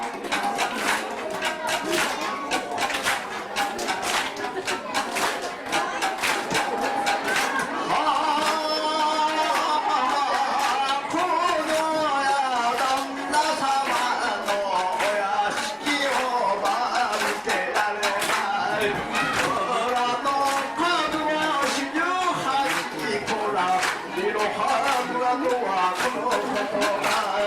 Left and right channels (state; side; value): identical; both; correlation 1.00